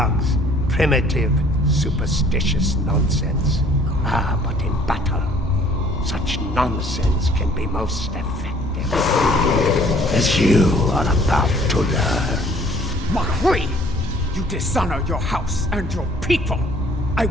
Primitive, superstitious nonsense. Ah, but in battle, such nonsense can be most effective. As you are about to learn. Mahri! You dishonor your house and your people! I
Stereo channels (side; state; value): both; normal; correlation 0.56